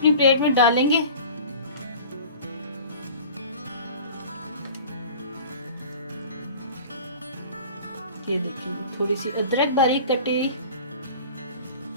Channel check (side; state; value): both; inverted; correlation -0.41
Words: प्लेट में डालेंगे। ये देखिए थोड़ी सी अदरक बारीक कटी।